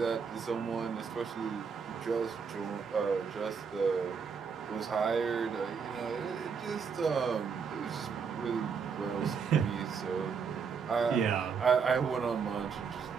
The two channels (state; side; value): quieter; left; 6.1 dB